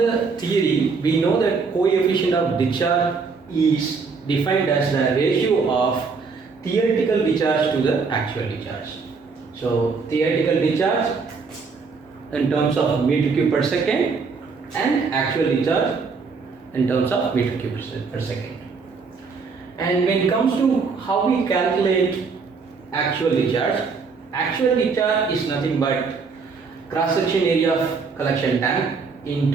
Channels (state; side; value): quieter; left; 4.9 dB